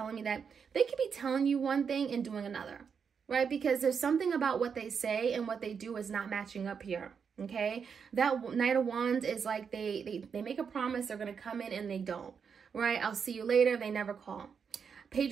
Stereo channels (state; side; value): quieter; left; 6.5 dB